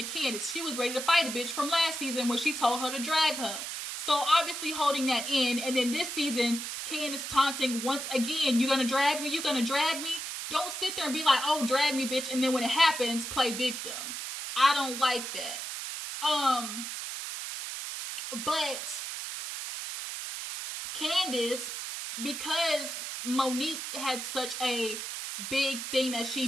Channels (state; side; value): noise; right; hiss, 6 dB below the sound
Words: Candiace. She was ready to fight a bitch from last season when she told her to drag her. So obviously holding that in. And then this season, Candiace taunting once again, you gonna drag me? You gonna drag me? Don't sit there and be like, oh, drag me, bitch. And then when it happens, play victim. I don't like that. But Candiace, because Monique had such a big thing that